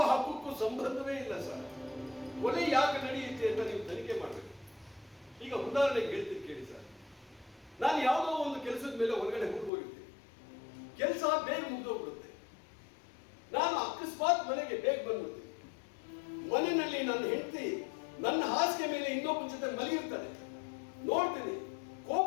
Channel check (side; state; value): right; drops out; at 9.7 s